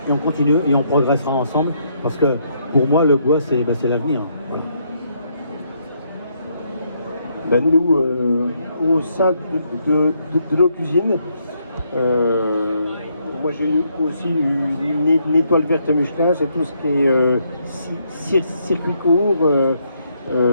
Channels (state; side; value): inverted; both; correlation -0.73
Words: et on continue et on progressera ensemble, parce que pour moi, le bois, c'est l'avenir. Voilà. Nous, au sein de nos cuisines, moi j'ai aussi une étoile verte Michelin, c'est tout ce qui est circuit court.